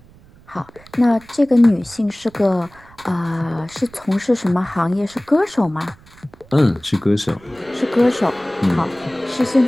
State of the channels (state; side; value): noise; right; rumble, 26 dB below the sound